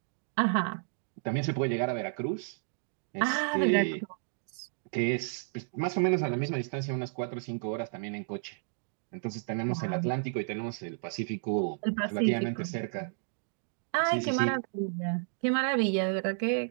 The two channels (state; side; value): silent; left; digital silence